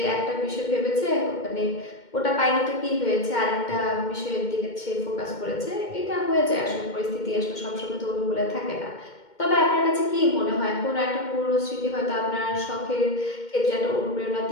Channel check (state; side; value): late; right; 2.1 ms